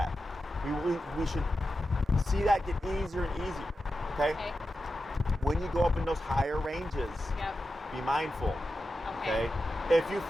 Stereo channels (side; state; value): both; normal; correlation 0.90